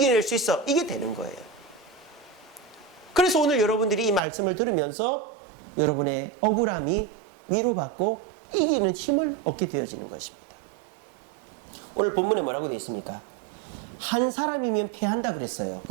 수 있어, 이게 되는 거예요. 그래서 오늘 여러분들이 이 말씀을 들으면서 여러분의 억울함이 위로받고 이기는 힘을 얻게 되어지는 것입니다. 오늘 본문에 뭐라고 되어 있습니까? 한 사람이면 패한다 그랬어요.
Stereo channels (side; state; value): left; drops out; at 4.2 s